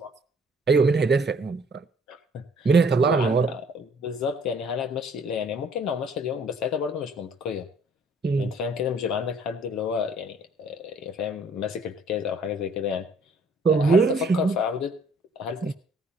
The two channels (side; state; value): both; normal; correlation 0.59